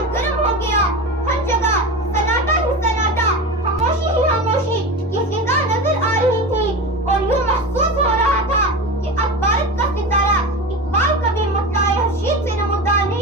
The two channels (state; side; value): normal; both; correlation 0.26